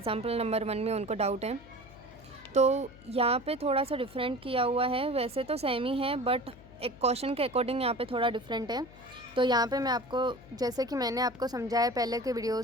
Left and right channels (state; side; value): noise; left; hum, 21 dB below the sound